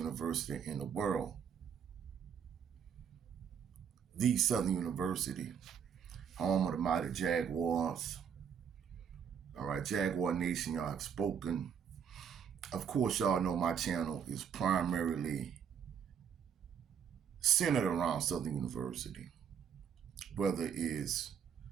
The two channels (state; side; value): quieter; left; 7.7 dB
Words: in the world, the Southern University, home of the mighty Jaguars. All right, Jaguar Nation, y'all have spoken. Of course, y'all know my channel is primarily centered around Southern University, whether it is